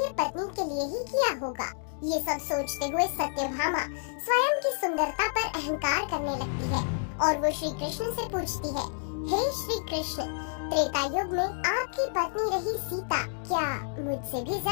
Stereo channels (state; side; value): silent; right; digital silence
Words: पत्नी के लिए ही किया होगा। ये सब सोचते हुए सत्यभामा स्वयं की सुंदरता पर अहंकार करने लगती है और वो श्री कृष्ण से पूछती है, हे श्री कृष्ण, त्रेता युग में आपकी पत्नी रही सीता क्या मुझसे भी